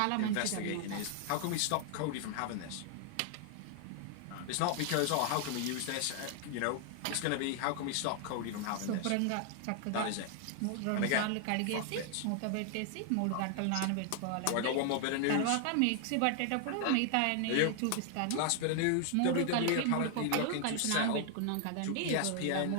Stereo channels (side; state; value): both; different; correlation 0.00